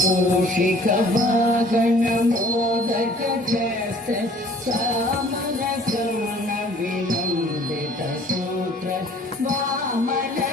మూషిక వాగణ మోదక చేస్తే సామన కరుణ వినందిత సూత్ర వామన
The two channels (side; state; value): both; normal; correlation 0.53